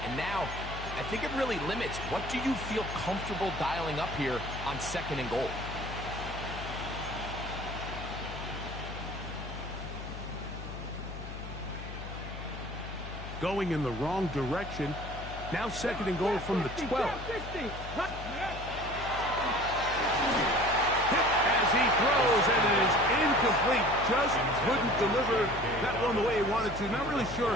And now, I think it really limits what do you feel comfortable dialing up here on second and goal. Going in the wrong direction. Now second and goal from the 12. As he throws, and it is incomplete. Just couldn't deliver that one the way he wanted to. Not really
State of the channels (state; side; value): noise; left; hum, 10 dB below the sound